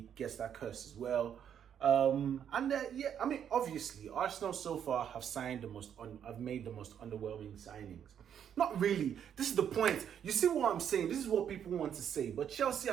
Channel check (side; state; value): left; quieter; 8.8 dB